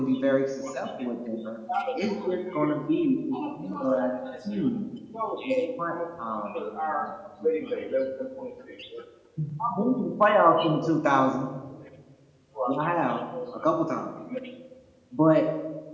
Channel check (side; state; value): both; identical; correlation 1.00